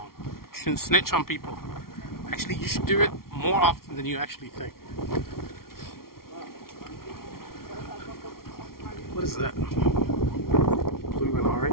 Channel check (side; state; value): right; late; 0.93 ms